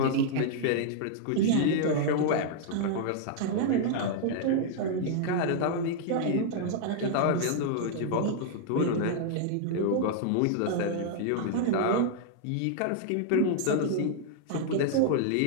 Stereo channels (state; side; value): different; both; correlation -0.01